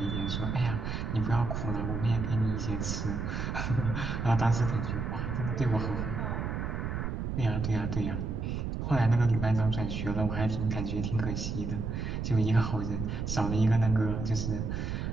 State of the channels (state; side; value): noise; right; rumble, 2 dB below the sound